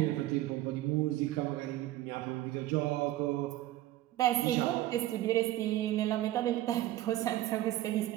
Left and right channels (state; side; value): quieter; left; 14.9 dB